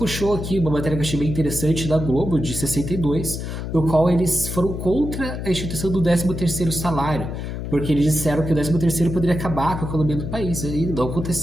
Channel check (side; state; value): left; noise; hum, 6 dB below the sound